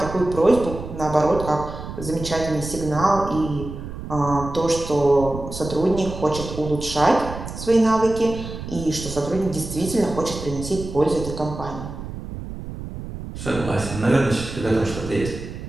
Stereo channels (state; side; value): noise; right; rumble, 9 dB below the sound